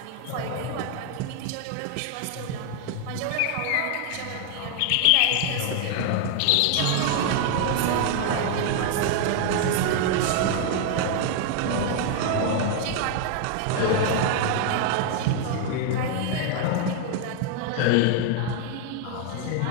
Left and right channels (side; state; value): both; different; correlation 0.00